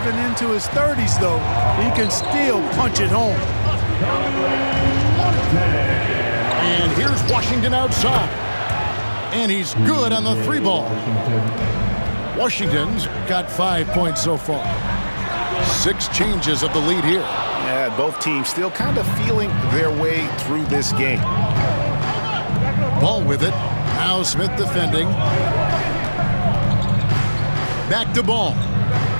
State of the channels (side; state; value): both; inverted; correlation -1.00